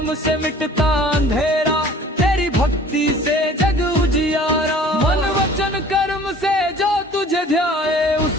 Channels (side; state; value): both; normal; correlation 0.49